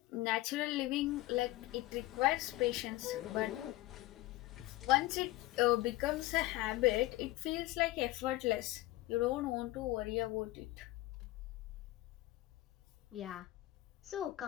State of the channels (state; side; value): quieter; right; 17.7 dB